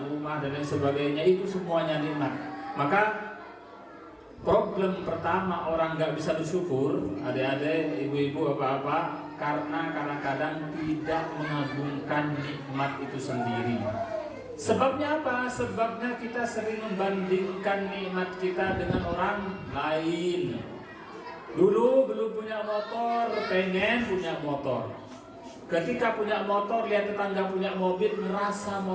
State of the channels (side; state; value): both; identical; correlation 1.00